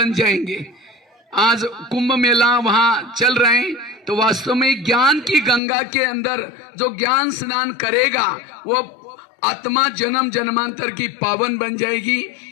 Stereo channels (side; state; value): right; drops out; at 5.6 s